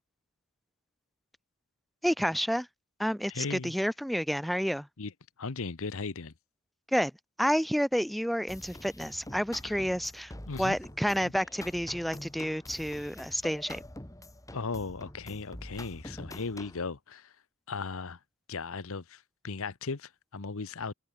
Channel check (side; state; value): both; normal; correlation 0.86